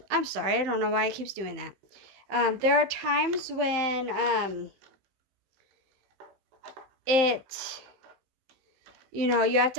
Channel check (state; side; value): late; left; 15 ms